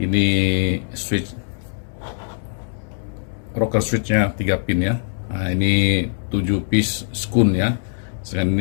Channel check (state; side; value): silent; right; digital silence